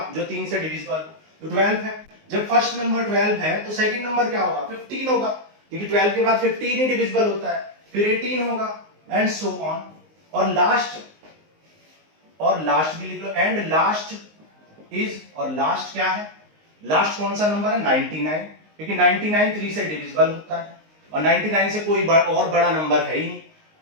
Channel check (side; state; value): left; late; 19 ms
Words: जो 3 से डिविजिबल, तो 12 है। जब फर्स्ट नंबर 12 है तो सेकंड नंबर क्या होगा? 15 होगा, क्योंकि 12 के बाद 15 ही डिविजिबल होता है, फिर 18 होगा एंड सो ऑन। और लास्ट भी लिख लो, एंड लास्ट इज, और लास्ट क्या है? लास्ट कौन सा नंबर है? 99, क्योंकि 99 3 से डिविजिबल होता है और 99 से कोई और बड़ा नंबर है ही नहीं,